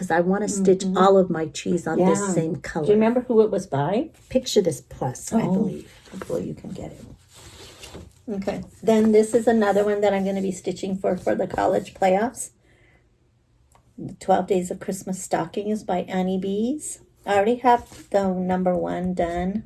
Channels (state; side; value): identical; both; correlation 1.00